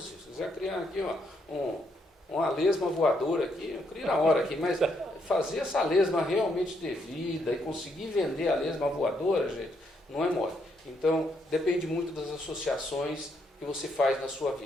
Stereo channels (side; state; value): both; normal; correlation 0.75